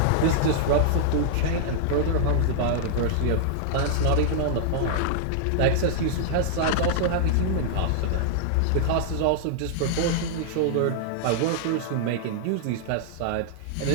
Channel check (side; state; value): both; different; correlation -0.01